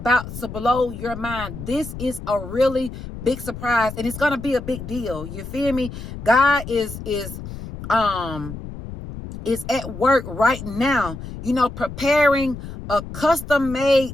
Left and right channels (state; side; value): noise; left; rumble, 10 dB below the sound